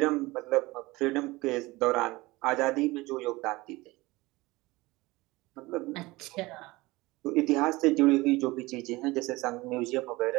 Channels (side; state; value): left; quieter; 21.1 dB